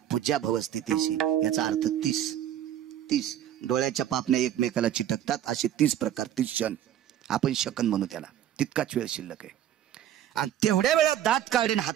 पूज्या भवस्ते तेशी. याचा अर्थ 30 डोळ्याच्या पापण्या एकमेकाला चिटकतात असे 30 प्रकार, 30 क्षण आपण शकन म्हणू त्याला. तितकाच वेळ शिल्लक आहे. आणि तेवढ्या वेळात दात काढून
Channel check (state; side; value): quieter; left; 11.1 dB